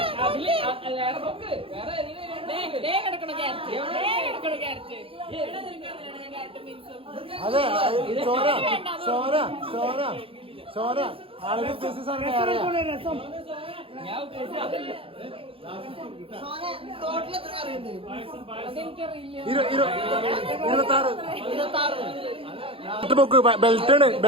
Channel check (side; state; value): left; late; 0.27 ms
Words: അതെ സോന സോന സോന സോന ആളുകൾ ബെൽറ്റാണ്